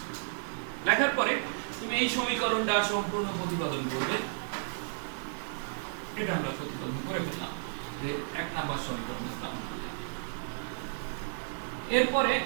লেখার পরে তুমি এই সমীকরণটা সম্পূর্ণ প্রতিপাদন করবে। এটা আমরা প্রতিপাদন করে ফেললাম, যে 1 নম্বর সমীকরণ লিখলাম। এরপরে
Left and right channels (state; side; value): silent; left; digital silence